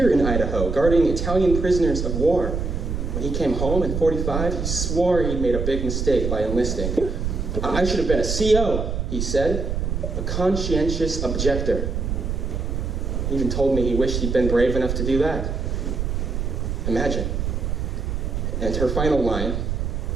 in Idaho, guarding Italian prisoners of war. When he came home in 45, he swore he'd made a big mistake by enlisting. I should have been a CO, he said, a conscientious objector. He even told me he wished he'd been brave enough to do that. Imagine. And her final line,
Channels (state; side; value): noise; right; rumble, 2 dB below the sound